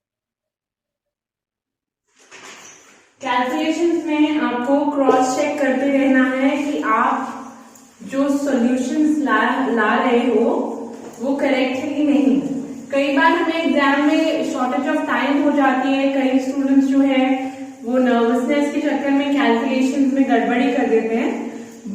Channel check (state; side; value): identical; both; correlation 1.00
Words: कैलकुलेशंस में आपको क्रॉस चेक करते रहना है कि आप जो सॉल्यूशंस ला रहे हो वो करेक्ट है कि नहीं. कई बार हमें एग्जाम में शॉर्टेज ऑफ टाइम हो जाती है, कई स्टूडेंट्स जो है वो नर्वसनेस के चक्कर में कैलकुलेशंस में गड़बड़ी कर देते हैं.